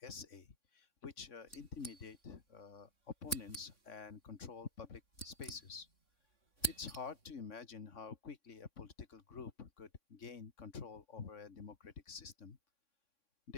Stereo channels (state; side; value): late; right; 3.6 ms